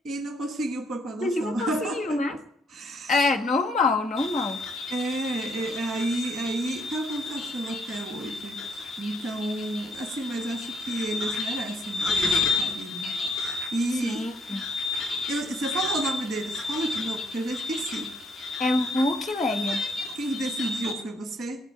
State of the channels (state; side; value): normal; both; correlation 0.69